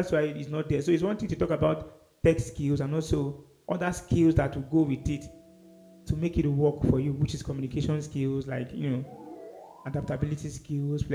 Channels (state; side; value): identical; both; correlation 1.00